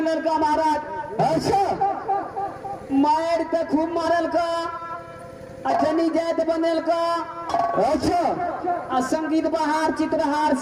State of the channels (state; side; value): identical; both; correlation 1.00